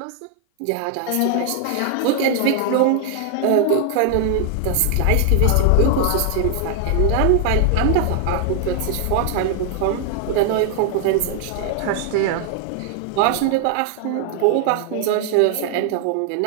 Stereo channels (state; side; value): different; both; correlation 0.00